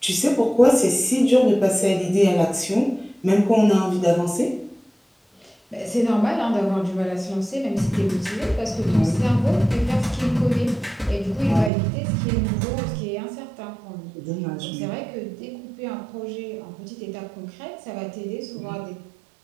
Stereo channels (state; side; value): drops out; left; at 11.7 s